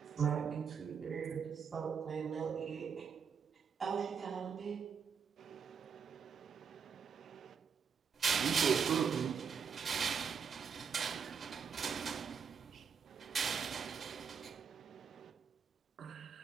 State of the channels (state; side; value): quieter; left; 6.7 dB